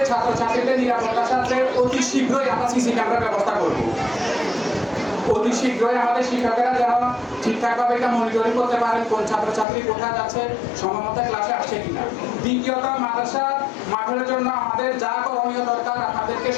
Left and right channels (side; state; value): right; drops out; at 9.7 s